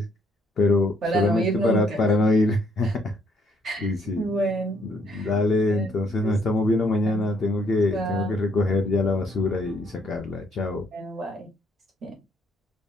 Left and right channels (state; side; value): normal; both; correlation 0.69